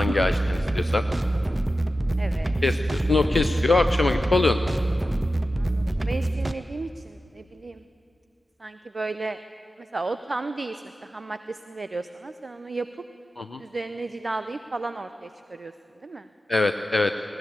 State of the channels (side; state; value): both; normal; correlation 0.93